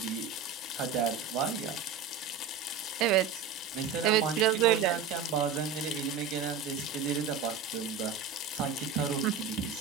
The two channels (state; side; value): quieter; left; 6.4 dB